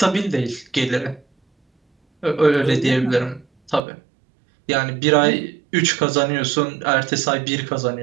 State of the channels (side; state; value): left; drops out; at 3.8 s